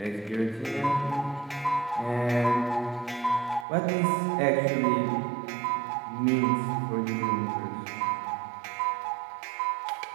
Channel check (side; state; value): left; drops out; at 3.7 s